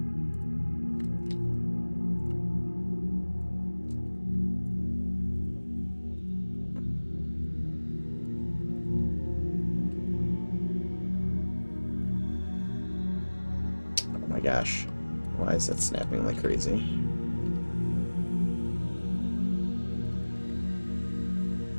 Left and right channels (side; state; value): both; inverted; correlation -1.00